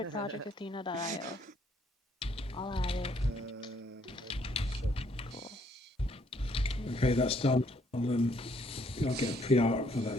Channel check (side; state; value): both; normal; correlation 0.67